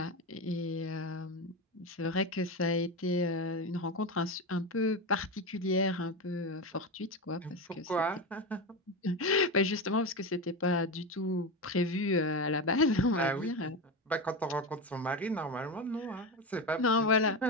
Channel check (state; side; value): normal; both; correlation 0.18